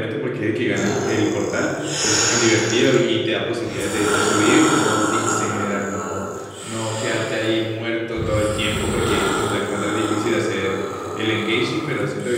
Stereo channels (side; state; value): both; identical; correlation 1.00